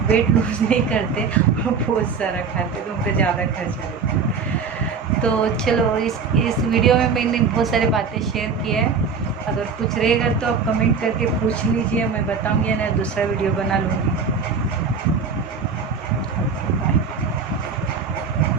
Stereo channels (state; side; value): quieter; left; 5.5 dB